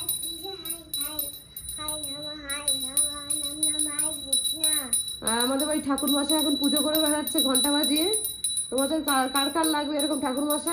আমাদের বাড়ি ঠাকুর মশাই এখন পুজো করে বেড়াচ্ছে ঘন্টা বাজিয়ে, তোমাদের কার কার লাগবে এরকম ঠাকুর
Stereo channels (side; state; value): both; identical; correlation 1.00